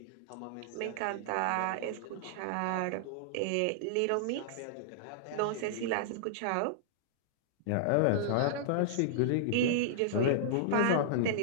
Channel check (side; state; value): both; different; correlation -0.02